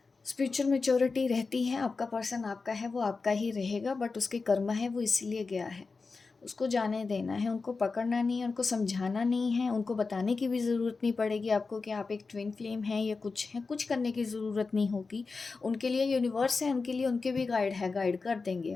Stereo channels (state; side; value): quieter; right; 4.3 dB